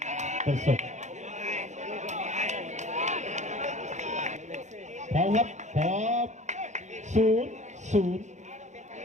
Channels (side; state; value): left; late; 0.34 ms